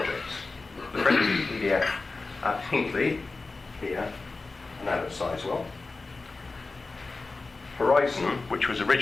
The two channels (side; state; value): right; quieter; 3.7 dB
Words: The French EDF at Hinkley, here, and out at Sizewell. Horizon, which was